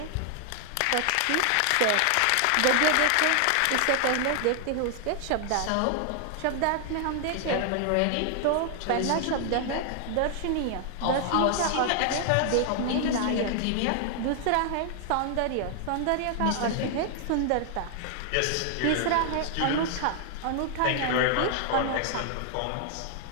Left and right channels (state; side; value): different; both; correlation 0.00